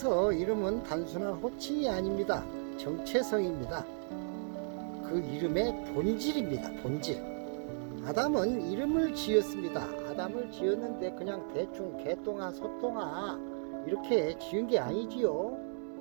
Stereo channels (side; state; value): left; silent; 55 dB below the other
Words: 이름은 단순한 호칭이 아닙니다. 정체성입니다. 그 이름의 본질입니다. 본질. 아담은 이름을 지었습니다. 아담을 지었는데 그냥 대충 개똥아 소똥아 이렇게 지은 게 아니지요.